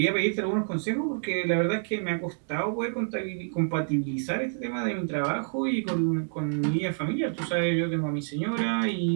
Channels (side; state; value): left; silent; digital silence